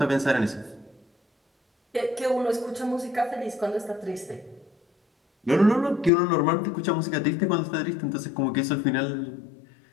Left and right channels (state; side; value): drops out; right; at 6.1 s